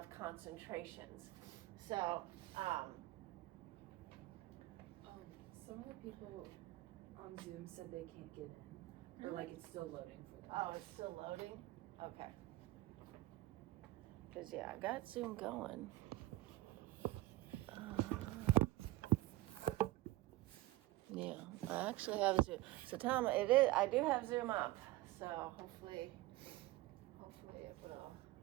concentrations. So some of the people on Zoom said they can't get in. Or like it's still loading for them. Oh, it's still loading? Okay. Because yeah, I got Zoom going. Yeah, I actually have Zoom. So Tom, I do have Zoom up. So hopefully it will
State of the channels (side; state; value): left; quieter; 18.0 dB